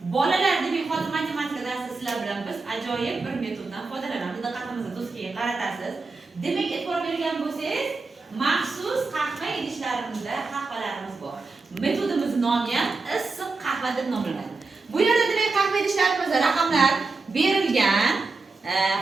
Bolalar demak hozir matematika darsida sizlar bilan biz ajoyib bir metoddan foydalanamiz. Diqqatingizni do'stga qaratasiz. Demak, e'tibor bergan bo'lsangiz, maxsus qahva idishlarimizda qahvalarimiz bor. Metodimizning nomi ham issiq qahva deb nomlanadi. Bu yerda demak qahva idishlarimizda raqamlar berilgan.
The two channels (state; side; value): quieter; left; 3.9 dB